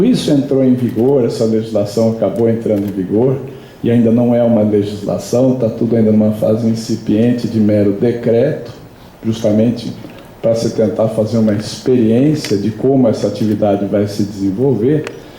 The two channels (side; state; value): both; identical; correlation 1.00